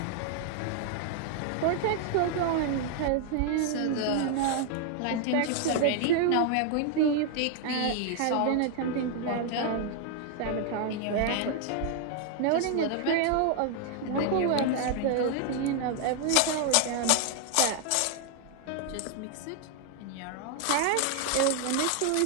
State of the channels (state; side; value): different; both; correlation 0.00